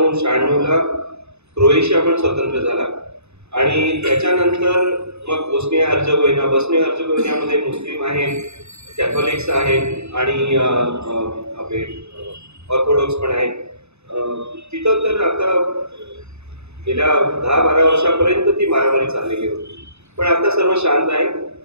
क्रोएशिया पण स्वतंत्र झाला आणि त्याच्यानंतर मग बोस्निया हर्जेगोविनामध्ये मुस्लिम आहेत, कॅथॉलिक्स आहेत आणि आपले ऑर्थोडॉक्स पण आहेत. तिथं तर आता गेल्या 10-12 वर्षापर्यंत ती मारामारी चाललेली होती, पण आता सर्व शांत आहे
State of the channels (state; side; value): late; left; 0.81 ms